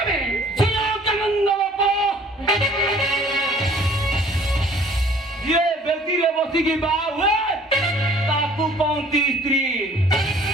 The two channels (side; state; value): both; normal; correlation 0.54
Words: ବେ? ସୁନନ୍ଦ ବାପ ଯିଏ ବେଦିରେ ବସିକି ବାହା ହୁଏ ତାକୁ କହନ୍ତି ସ୍ତ୍ରୀ